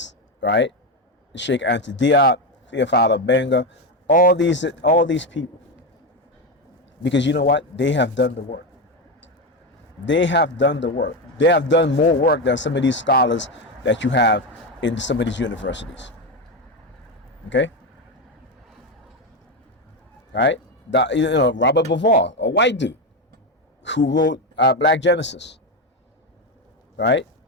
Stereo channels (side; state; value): both; normal; correlation 0.12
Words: right? Sheikh Anta Diop, Theophilo Benga, all these people, because you know what? They have done the work. They have done the work. They have done more work than some of these scholars that you have in some of these universities. Okay? Right? Robert Bauval, a white dude who wrote Black Genesis. Right?